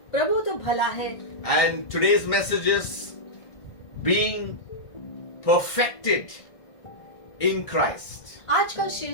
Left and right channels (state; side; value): late; right; 1.6 ms